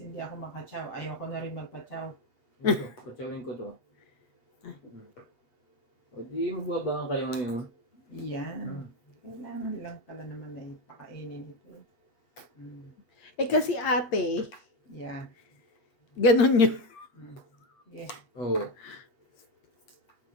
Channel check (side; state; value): right; late; 8.6 ms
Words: hindi ako makachaw, ayoko na rin magpachaw. Ito, patsawin ko to. O di magbabangan kayo ngayon. Yan. Hmm. Kailangan lang pala naman na ipakainin ito. Eh kasi ate, Yeah. ganun yun. Yeah. Oo.